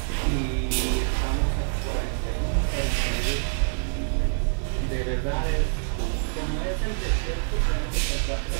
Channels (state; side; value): silent; left; 61 dB below the other